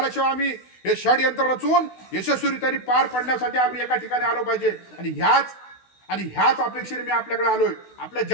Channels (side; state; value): right; late; 16 ms